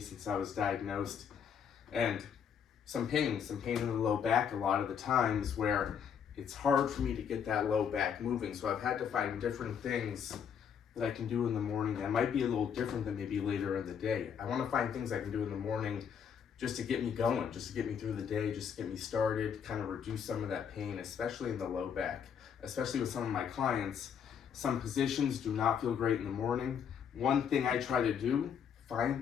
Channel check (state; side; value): quieter; right; 7.7 dB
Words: since I was diagnosed. And some pain in the low back a lot of the times where it's hard for me to get that low back moving. So I've had to find different things that I can do in the morning that might be a little different than maybe later in the day. I want to find things I can do in the morning just to get me going, just to get me through the day, just to get me started, kind of reduce some of that pain, especially in the low back. Especially with some of my clients, some positions do not feel great in the morning. One thing I try to do,